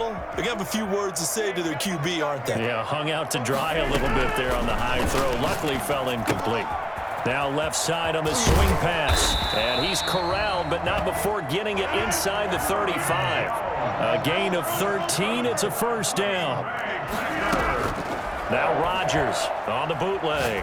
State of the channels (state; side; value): identical; both; correlation 1.00